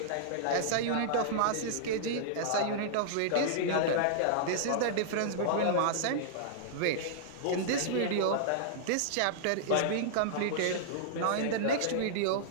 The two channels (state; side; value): different; both; correlation -0.02